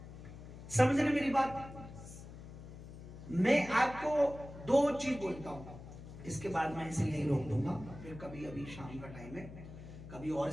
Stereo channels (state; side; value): noise; left; hum, 14 dB below the sound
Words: समझ रहे मेरी बात? मैं आपको दो चीज बोलता हूं, इसके बाद मैं इसे यहीं रोक दूंगा, फिर कभी अभी शाम का टाइम है, कभी और